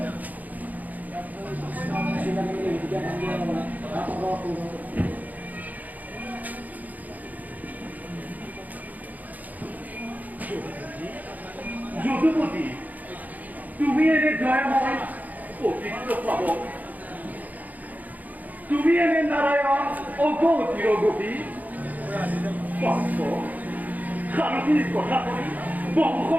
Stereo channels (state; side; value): late; left; 0.080 ms